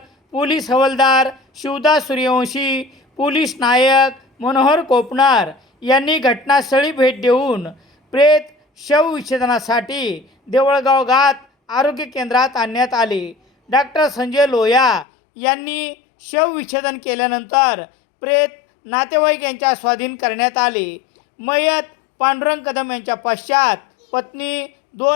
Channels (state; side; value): drops out; right; at 15.1 s